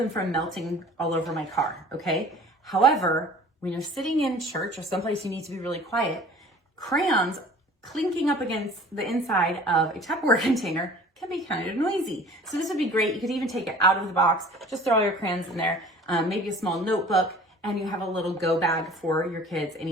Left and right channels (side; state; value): both; normal; correlation 0.46